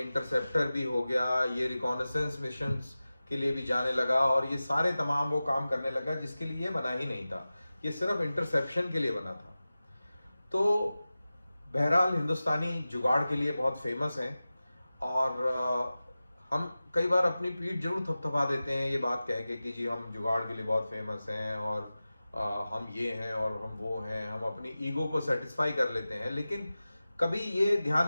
इंटरसेप्टर भी हो गया, ये रिकॉनेसेंस मिशंस के लिए भी जाने लगा, और ये सारे तमाम वो काम करने लगा जिसके लिए ये बना ही नहीं था। ये सिर्फ इंटरसेप्शन के लिए बना था। तो बहरहाल हिंदुस्तानी जुगाड़ के लिए बहुत फेमस हैं, और हम कई बार अपनी पीठ जरूर थपथपा देते हैं ये बात कह के कि जी हम जुगाड़ के लिए बहुत फेमस हैं और हम ये हैं और हम वो हैं, हम अपनी ईगो को सेटिस्फाई कर लेते हैं, लेकिन कभी ये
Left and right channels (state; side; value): inverted; both; correlation -0.96